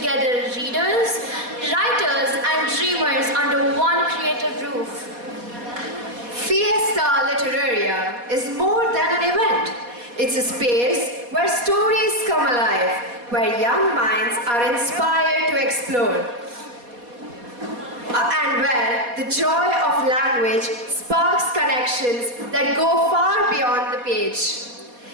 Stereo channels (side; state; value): left; late; 4.2 ms